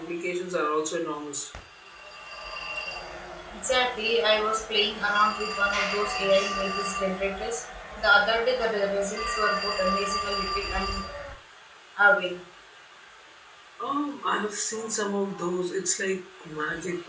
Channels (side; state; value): both; identical; correlation 1.00